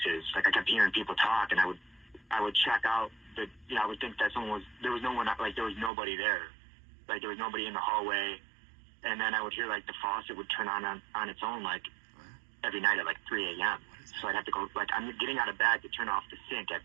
Like, I kept hearing people talk, and I would check out the, I would think that there was no one, like, there was nobody there. Like, there was nobody in the hallway. And then I would hear, like, the faucet would turn on its own, like, every night at, like, 3 a.m. So I'd have to go, like, I'm getting out of bed to turn off the sink at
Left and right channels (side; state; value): left; drops out; at 5.9 s